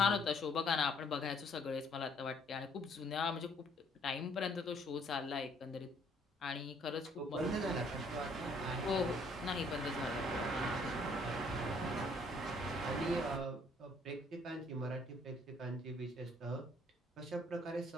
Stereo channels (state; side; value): normal; both; correlation 0.63